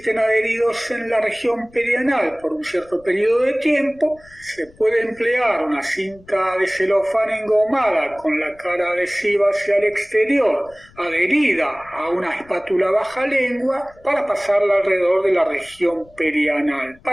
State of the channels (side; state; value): left; noise; rumble, 27 dB below the sound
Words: adheridos en la región perianal por un cierto periodo de tiempo, se puede emplear una cinta de celofán engomada con la cara adhesiva hacia el exterior, adherida a una espátula baja lengua, para pasarla alrededor de la región perianal,